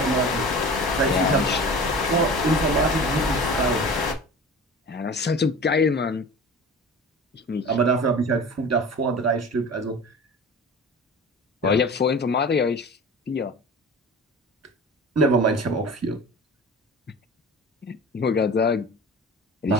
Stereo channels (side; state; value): both; normal; correlation 0.37